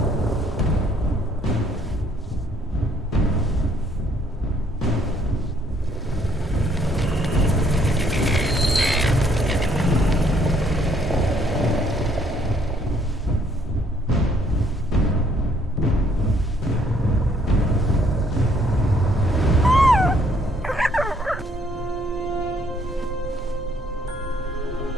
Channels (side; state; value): both; normal; correlation 0.65